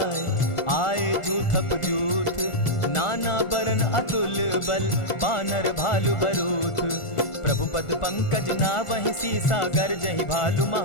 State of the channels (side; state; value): right; late; 1.4 ms